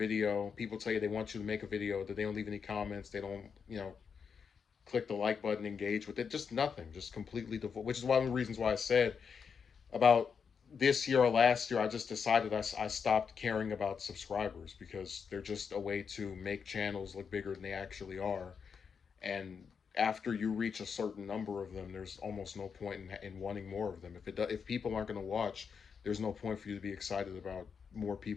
People tell you they want you to make a video, that they don't leave any comments. They don't, click the like button, engage with it. Just nothing. Just completely devoid. Which is one of the reasons why I said about this year or last year, I just decided I stopped caring about subscribers because they're just a way to make channels look bigger than they actually are. And after you reach a certain number of them, there's almost no point in wanting more of them. If people aren't going to watch, there's no point for you to be excited about more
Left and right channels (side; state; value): right; quieter; 6.3 dB